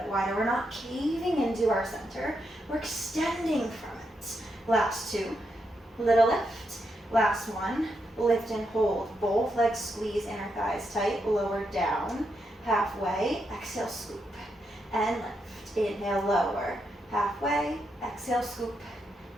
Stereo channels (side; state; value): both; normal; correlation 0.82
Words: wider. We're not caving into our center. We're extending from it. Last 2. Little lift. Last 1. Lift and hold. Both legs squeeze inner thighs tight. Lower down. Halfway. Exhale, scoop. And lift. Inhale, lower. Halfway. Exhale, scoop.